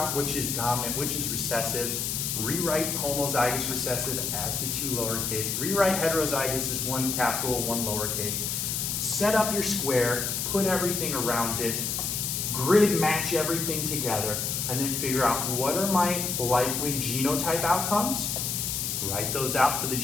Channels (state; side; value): noise; left; hiss, 1 dB below the sound